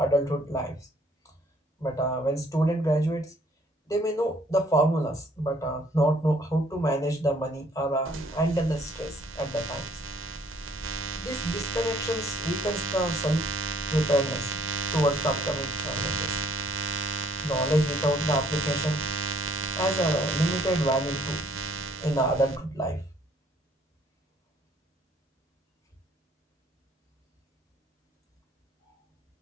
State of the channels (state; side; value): normal; both; correlation 0.62